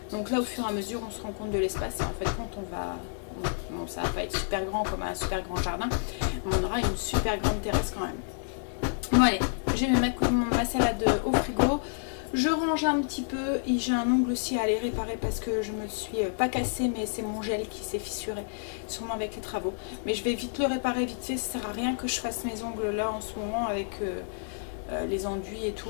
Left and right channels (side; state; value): right; silent; digital silence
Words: Donc là, au fur et à mesure, on se rend compte de l'espace. Et en fait, quand on va... Bon, ça va pas être super grand comme un super grand jardin, mais on aura une super grande terrasse quand même. Bon allez, je vais mettre ma salade au frigo. Je range un petit peu et j'ai un ongle aussi à aller réparer parce que je me le suis pas cassé, mais c'est mon gel qui s'est fissuré, sûrement avec les travaux. Mais je vais vite le réparer vite fait, ça sert à rien que je fasse mes ongles là en ce moment avec les enduits et tout,